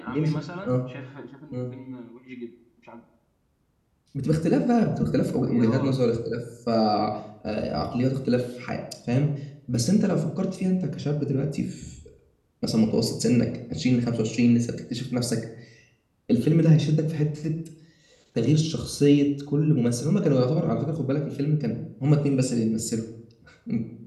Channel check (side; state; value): both; identical; correlation 1.00